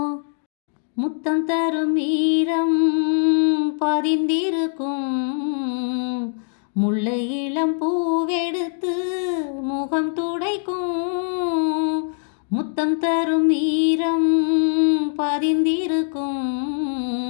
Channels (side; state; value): right; silent; digital silence